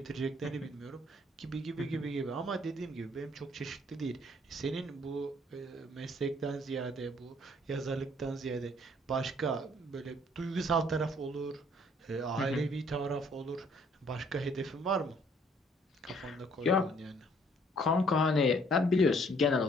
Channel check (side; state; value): both; normal; correlation 0.62